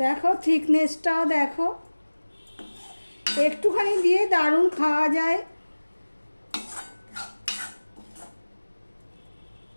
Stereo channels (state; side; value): inverted; both; correlation -1.00